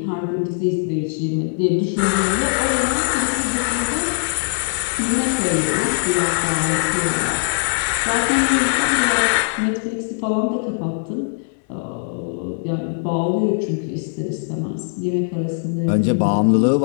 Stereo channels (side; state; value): right; silent; digital silence